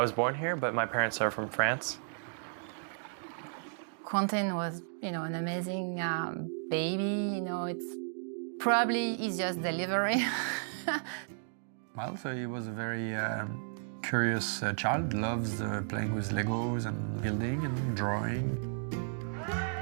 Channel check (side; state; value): left; silent; digital silence